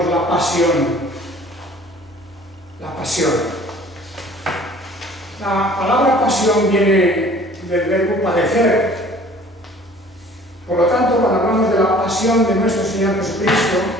la pasión. La pasión. La palabra pasión viene del verbo padecer. Por lo tanto, cuando hablamos de la pasión de nuestro Señor Jesucristo,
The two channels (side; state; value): both; normal; correlation 0.51